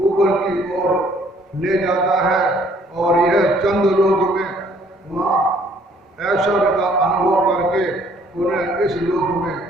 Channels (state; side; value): normal; both; correlation 0.61